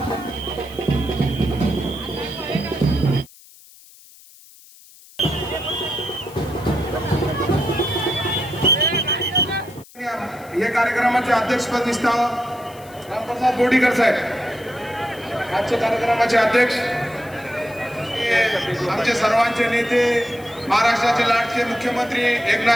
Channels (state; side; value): noise; left; hiss, 23 dB below the sound